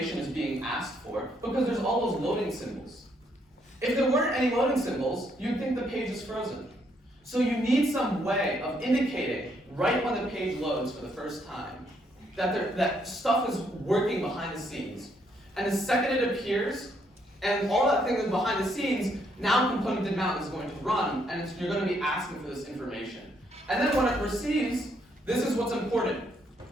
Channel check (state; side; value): normal; both; correlation 0.72